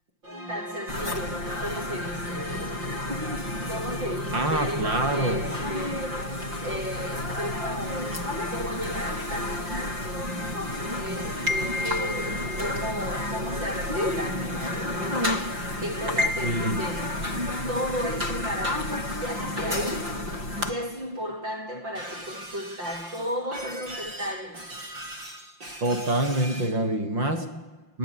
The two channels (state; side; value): late; left; 5.7 ms